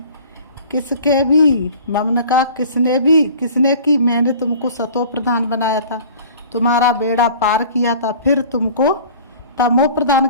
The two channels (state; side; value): inverted; both; correlation -0.46